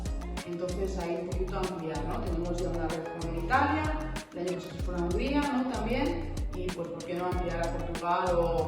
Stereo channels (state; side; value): identical; both; correlation 1.00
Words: Entonces, ahí un poquito ampliar, ¿no? Tenemos ya una red con Italia, el año pasado se fue a Hungría, ¿no?, también, y pues, ¿por qué no ampliar a Portugal